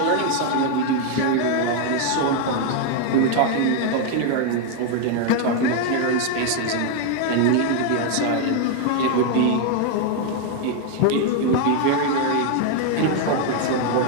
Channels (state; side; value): different; both; correlation 0.00